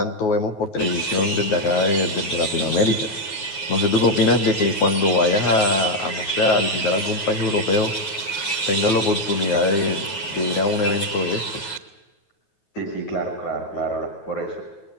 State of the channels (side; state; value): right; late; 9.3 ms